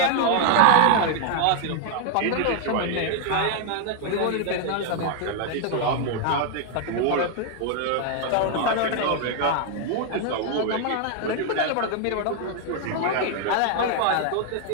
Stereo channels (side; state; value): both; different; correlation 0.00